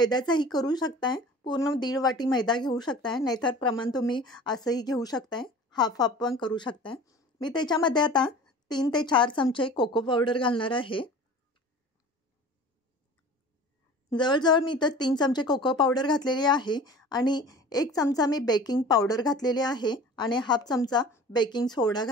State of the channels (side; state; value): both; normal; correlation 0.41